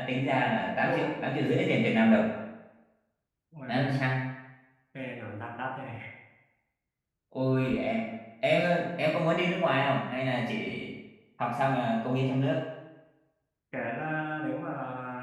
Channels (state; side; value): identical; both; correlation 1.00